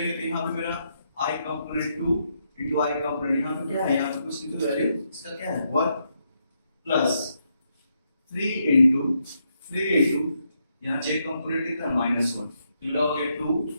तो यहां पे मेरा i component 2 into i component, यहां पे क्या है, यहां पे कुछ नहीं तो वैल्यू इसका क्या है 1 प्लस 3 into यहां j कंपोनेंट कितना है -1, तो हो गया 2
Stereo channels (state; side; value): inverted; both; correlation -0.79